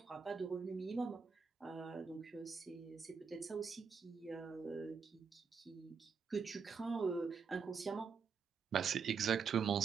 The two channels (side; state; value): left; quieter; 5.8 dB